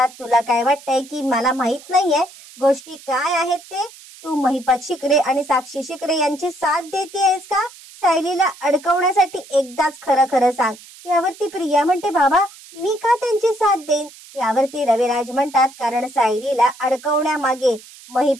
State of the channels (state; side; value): noise; right; hiss, 20 dB below the sound